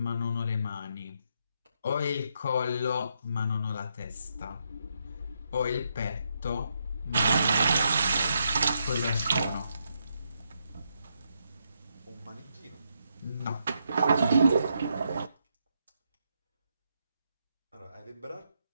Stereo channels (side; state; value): both; inverted; correlation -0.79